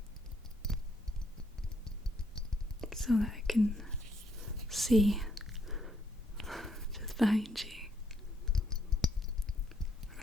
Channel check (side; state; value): both; normal; correlation 0.72